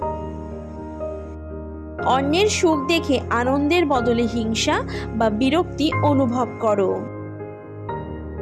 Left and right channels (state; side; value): identical; both; correlation 1.00